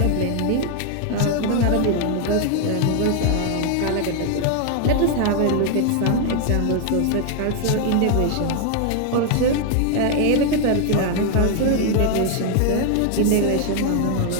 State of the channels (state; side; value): different; both; correlation 0.00